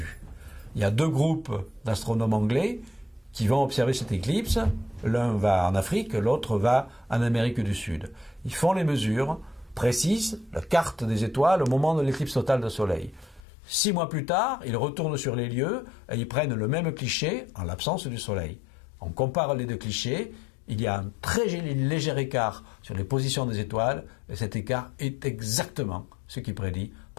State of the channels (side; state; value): right; drops out; at 13.4 s